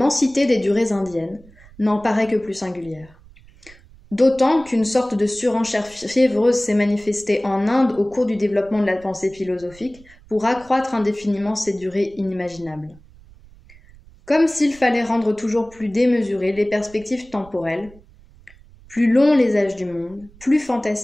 des durées indiennes n'en paraît que plus singulière. D'autant qu'une sorte de surenchère fiévreuse s'est manifestée en Inde au cours du développement de la pensée philosophique pour accroître indéfiniment ces durées inimaginables. Comme s'il fallait rendre toujours plus démesurées les perspectives temporelles, plus longs les âges du monde, plus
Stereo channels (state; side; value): noise; right; rumble, 24 dB below the sound